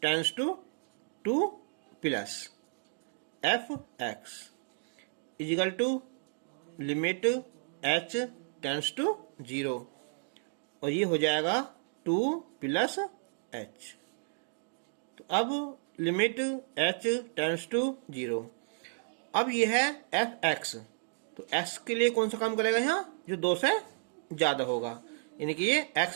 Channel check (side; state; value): left; silent; digital silence